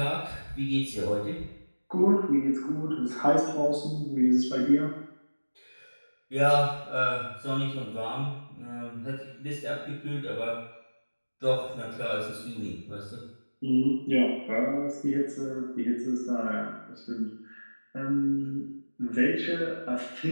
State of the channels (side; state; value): both; inverted; correlation -1.00